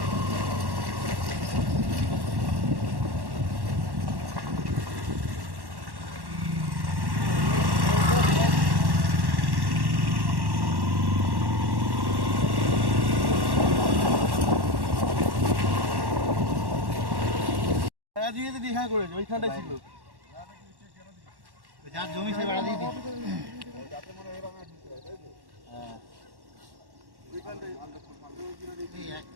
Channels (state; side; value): late; left; 1.1 ms